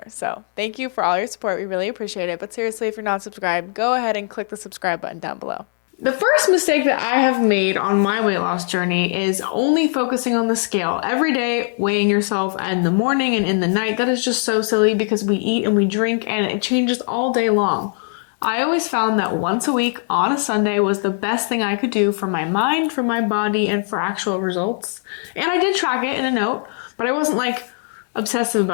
So thank you for all your support. We really appreciate it. But seriously, if you're not subscribed, go ahead and click the subscribe button down below. The first mistake that I have made on my weight loss journey is only focusing on the scale every day, weighing yourself in the morning and in the night. That is just so silly because we eat and we drink and it changes all day long. I always found that once a week on a Sunday was the best thing I could do for my mind, for my body, and for actual results. And I did track it in a note, but I wasn't like obsessive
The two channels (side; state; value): right; silent; 57 dB below the other